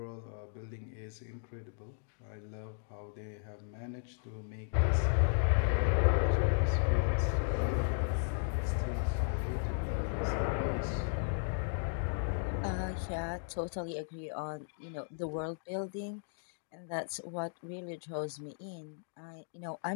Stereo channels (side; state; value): right; silent; digital silence